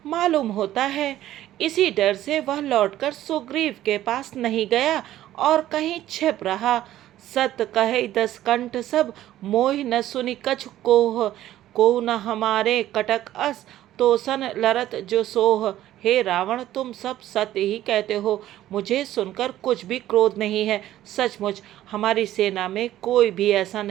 मालूम होता है इसी डर से वह लौटकर सुग्रीव के पास नहीं गया और कहीं छिप रहा। सत कहे दस कंठ सब, मोहि न सुनि कछु कोह। को न हमारे कटक अस, तोसन लरत जो सोह। हे रावण, तुम सब सत्य ही कहते हो, मुझे सुनकर कुछ भी क्रोध नहीं है। सचमुच हमारी सेना में कोई भी ऐसा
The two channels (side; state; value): left; quieter; 13.4 dB